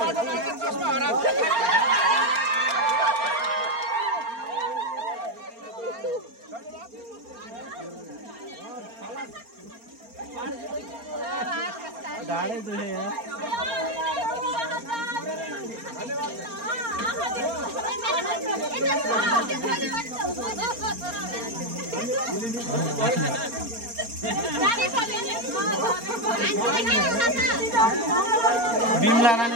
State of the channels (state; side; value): late; left; 4.3 ms